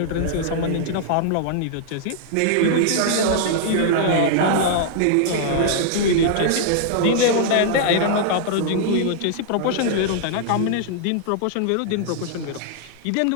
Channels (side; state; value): both; different; correlation -0.01